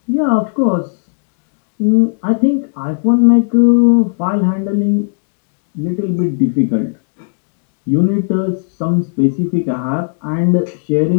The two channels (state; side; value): silent; right; digital silence